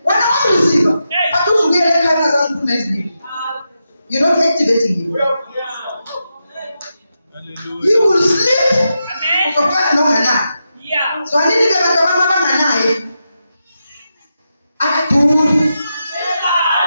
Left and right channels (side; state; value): both; inverted; correlation -0.87